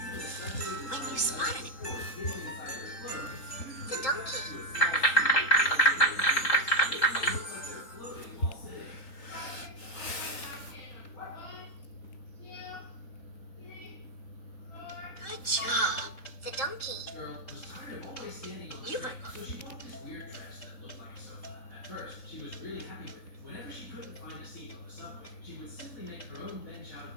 When you spotted it, the donkey. Good job. The donkey. You've unlocked.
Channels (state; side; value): late; right; 3.8 ms